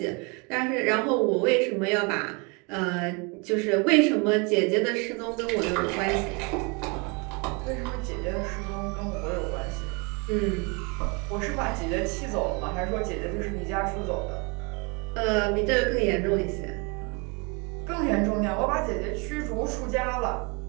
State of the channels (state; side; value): quieter; left; 31.6 dB